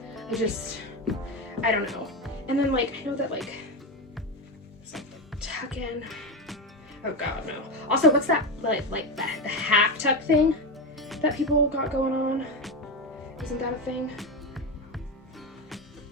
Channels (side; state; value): both; normal; correlation 0.16